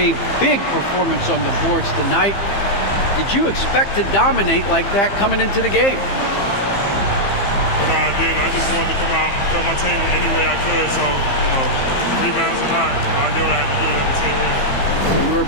big performance on the boards tonight. Did you expect to dominate like that coming into the game? No, I didn't. I just wanted to come out, help my team any way I could. So, rebounds or not, I did what I had to do to help the team win. You were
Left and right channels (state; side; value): late; right; 15 ms